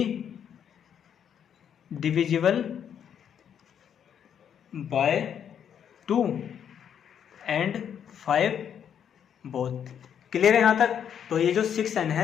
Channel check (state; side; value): quieter; right; 8.6 dB